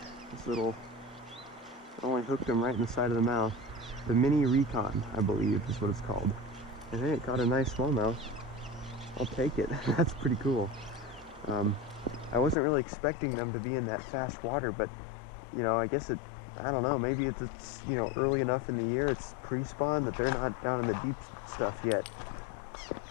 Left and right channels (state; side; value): drops out; right; at 12.6 s